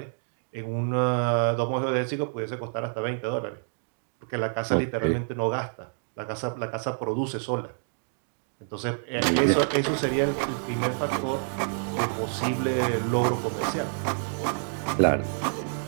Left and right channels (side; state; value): left; silent; digital silence